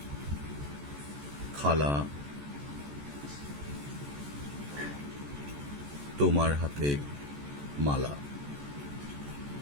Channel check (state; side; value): late; left; 14 ms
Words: খালা, তোমার হাতে মালা,